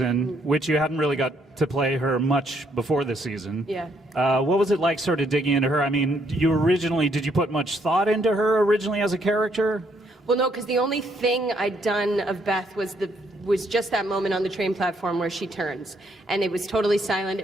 which you hadn't really got to play her much before this season. Yeah. What was it like sort of digging into her? I mean, did you put much thought into her originally as a character? Well, no, because the only thing I'd done of Beth was just that moment on the train platform where she turns, and it was totally silent,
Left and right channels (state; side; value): normal; both; correlation 0.71